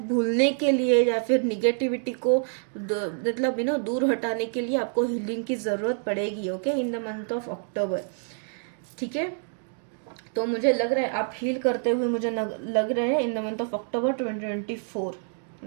भूलने के लिए या फिर निगेटिविटी को मतलब दूर हटाने के लिए आपको हीलिंग की जरूरत पड़ेगी। Okay, in the month of October. ठीक है, तो मुझे लग रहा है आप हील करते हुए मुझे लग रहे हैं इन the month of October 2024,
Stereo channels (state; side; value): silent; left; 57 dB below the other